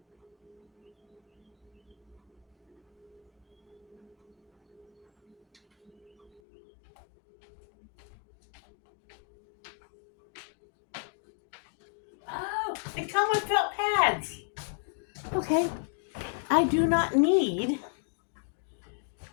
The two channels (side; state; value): right; drops out; at 6.4 s